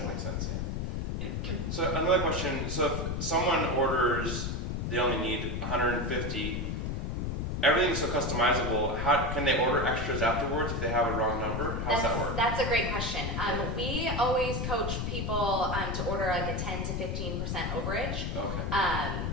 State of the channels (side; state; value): left; noise; rumble, 2 dB below the sound